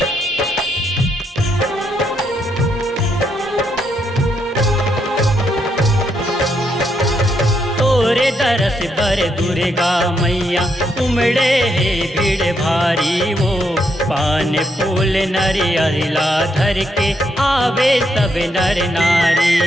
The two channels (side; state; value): both; normal; correlation 0.78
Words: बर दुर्गा मैया उमड़े है भीड़ भारी वो पान फूल नरियला धर के आवे सब नर